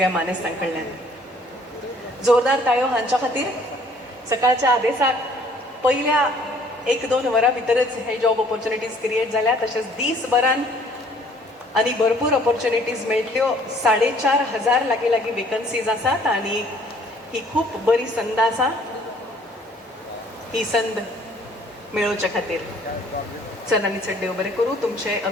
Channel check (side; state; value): both; normal; correlation 0.58